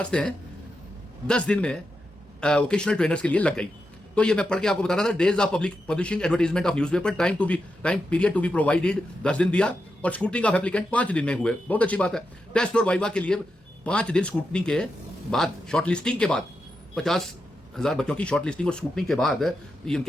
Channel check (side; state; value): both; normal; correlation 0.87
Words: 10 दिन में वोकेशनल ट्रेनर्स के लिए लग गई। तो ये मैं पढ़ के आपको बता रहा था। Days of publishing advertisement of newspaper, time period to be provided 10 दिन दिया और स्क्रूटनिंग ऑफ एप्लीकेंट 5 दिन में हुए। बहुत अच्छी बात है। टेस्ट और वाइवा के लिए 5 दिन स्क्रूटनिंग के बाद, शॉर्टलिस्टिंग के बाद, 50,000 बच्चों की शॉर्टलिस्टिंग और स्क्रूटनिंग के बाद